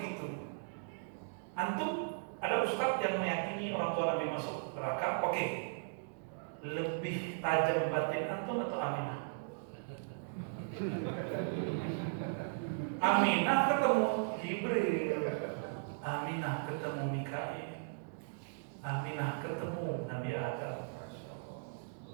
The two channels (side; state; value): left; silent; digital silence